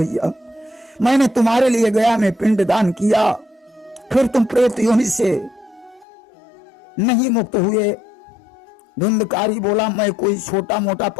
मैंने तुम्हारे लिए गया में पिंड दान किया, फिर तुम प्रेत योनि से नहीं मुक्त हुए। धुंधकारी बोला, मैं कोई छोटा मोटा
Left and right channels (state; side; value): drops out; right; at 6.1 s